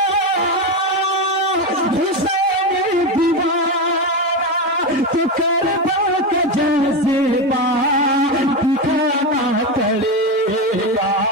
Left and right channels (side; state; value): both; normal; correlation 0.15